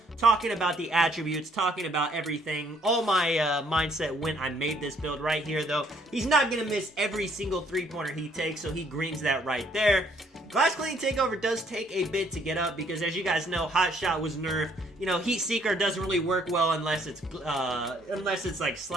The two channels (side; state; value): both; normal; correlation 0.65